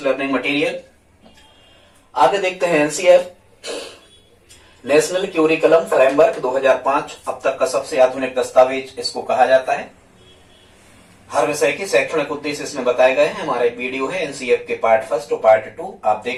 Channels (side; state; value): both; identical; correlation 1.00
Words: लर्निंग मटेरियल। आगे देखते हैं NCF नेशनल क्यूरिकुलम फ्रेमवर्क 2005, अब तक का सबसे आधुनिक दस्तावेज इसको कहा जाता है। हर विषय के शैक्षणिक उद्देश्य इसमें बताए गए हैं। हमारा एक वीडियो है NCF के पार्ट 1 और पार्ट 2, आप